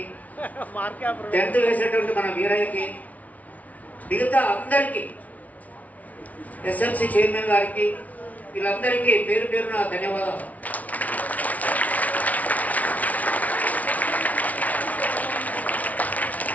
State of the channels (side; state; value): right; late; 0.071 ms